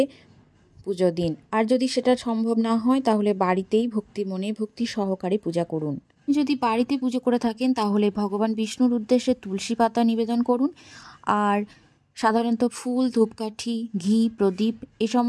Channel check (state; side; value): identical; both; correlation 1.00